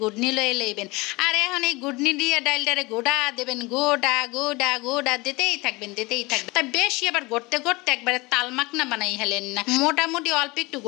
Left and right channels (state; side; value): quieter; right; 23.7 dB